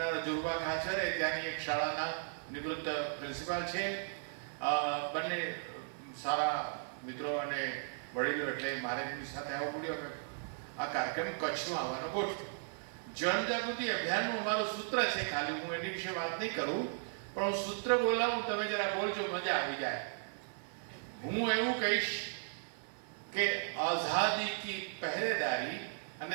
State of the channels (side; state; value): left; silent; digital silence